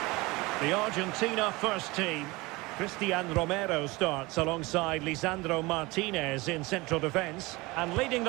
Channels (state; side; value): quieter; left; 22.8 dB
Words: The Argentina first team. Cristian Romero starts alongside Lisandro Martinez in central defence. And leading